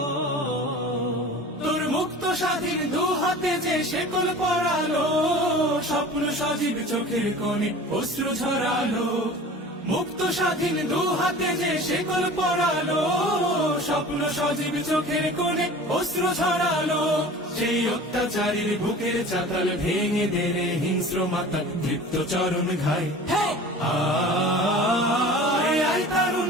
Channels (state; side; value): normal; both; correlation 0.40